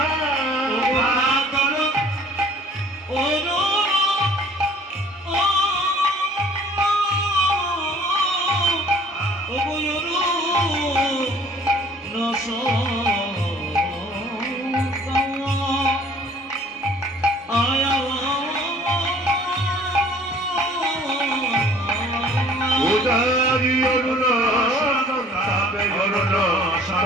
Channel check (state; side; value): normal; both; correlation 0.53